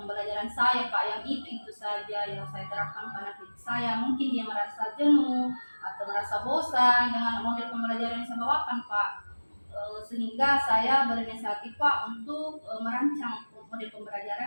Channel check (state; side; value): inverted; both; correlation -1.00